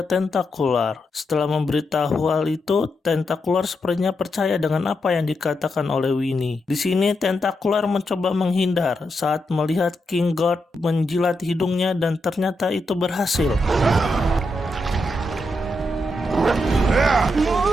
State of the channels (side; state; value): both; normal; correlation 0.84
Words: Tentacular. Setelah memberitahu hal itu, Tentacular sepertinya percaya dengan apa yang dikatakan oleh Winnie. Di sini Tentacular mencoba menghindar saat melihat King Gorge menjilat hidungnya dan ternyata itu berhasil.